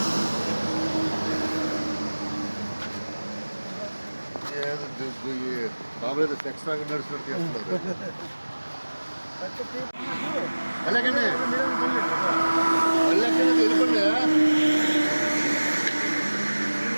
బాబు ఏదో సెక్స్ లాగా నడుచుకుంటూ చేస్తున్నారు వెళ్ళకండి వెళ్ళకండి వెళ్ళిపోండి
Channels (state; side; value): inverted; both; correlation -1.00